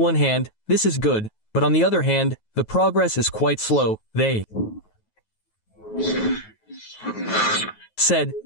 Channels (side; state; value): right; late; 9.3 ms